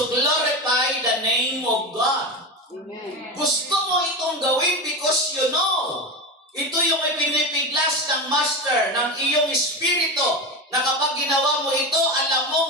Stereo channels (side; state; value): both; normal; correlation 0.21